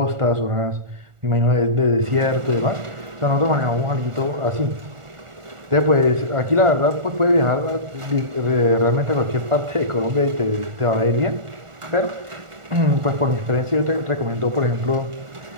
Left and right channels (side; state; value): left; late; 1.4 ms